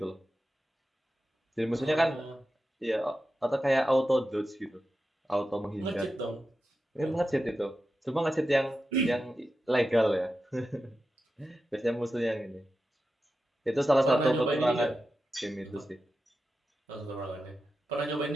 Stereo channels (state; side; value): normal; both; correlation 0.91